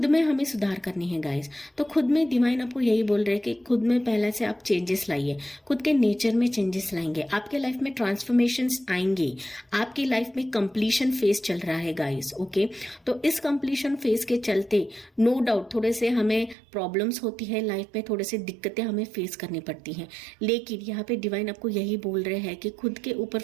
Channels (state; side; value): drops out; left; at 16.6 s